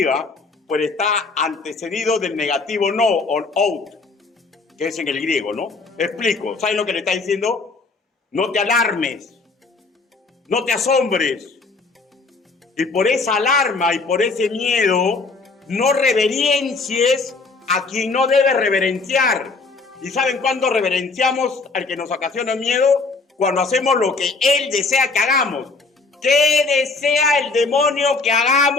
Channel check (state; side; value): quieter; right; 3.9 dB